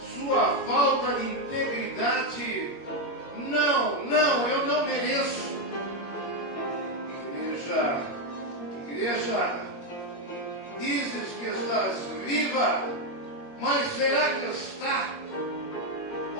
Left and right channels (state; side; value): late; right; 21 ms